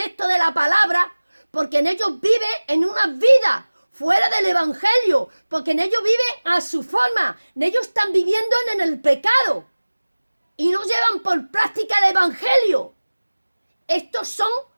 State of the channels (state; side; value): inverted; both; correlation -1.00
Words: de la palabra, porque en ellos viven en una vida fuera del evangelio, porque en ellos viven a su forma, en ellos están viviendo en el pecado y no llevan por práctica el evangelio. Estos son